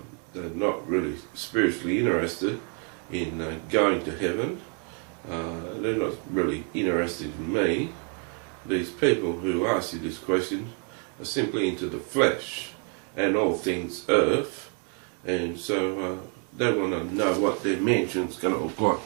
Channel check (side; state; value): left; quieter; 39.9 dB